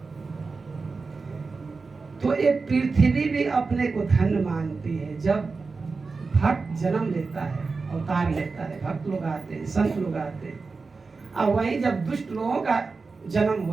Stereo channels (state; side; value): quieter; left; 4.3 dB